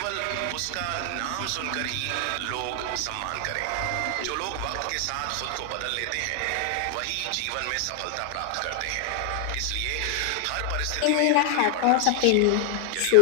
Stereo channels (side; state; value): both; different; correlation 0.00